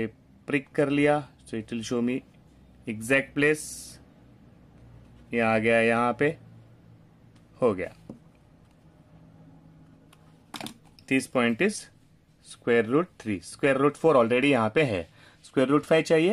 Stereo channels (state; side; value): identical; both; correlation 1.00